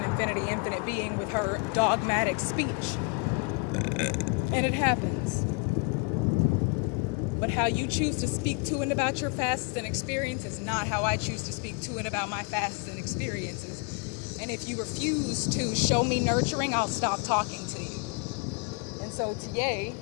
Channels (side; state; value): right; quieter; 31.0 dB